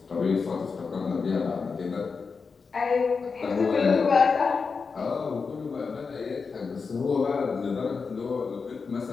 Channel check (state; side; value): quieter; right; 5.0 dB